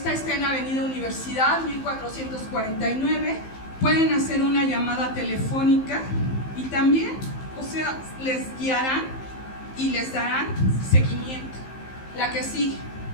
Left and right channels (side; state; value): right; late; 15 ms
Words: está en Avenida Universidad 1449. Pueden hacer una llamada telefónica y también, o sea, les guiarán y les darán seguimiento. La que sigue.